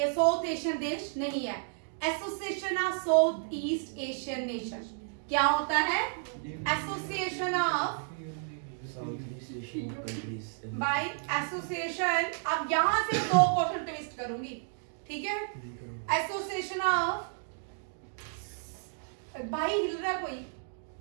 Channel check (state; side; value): silent; left; digital silence